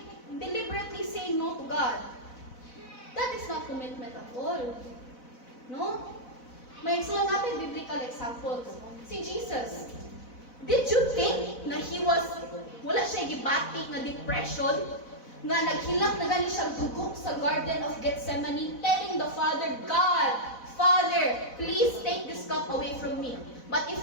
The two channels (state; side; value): late; right; 4.0 ms